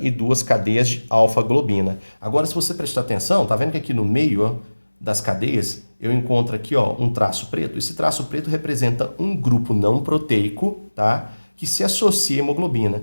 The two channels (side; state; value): both; inverted; correlation -1.00